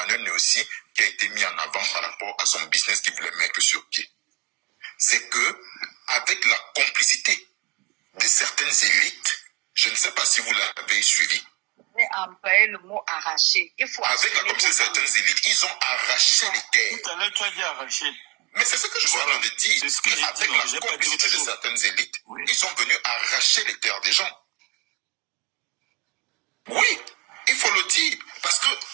Néossi qui a été mis en avant par rapport à son business qu'il voulait mettre sur pied. C'est que, avec la complicité de certaines élites, je ne sais pas si vous l'avez suivi. Mais employer le mot arracher. Il faut avec la complicité de certaines élites, ils ont arraché les terres. Tout à l'heure, tu as dit arracher. Mais c'est ce que je suis en train de dire. C'est ce que j'ai avec dit, non, la j'ai pas dit complicité autre de chose. certaines élites, Oui. ils sont venus arracher les terres des gens. Oui, il faut le dire. Parce que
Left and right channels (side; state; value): left; quieter; 26.4 dB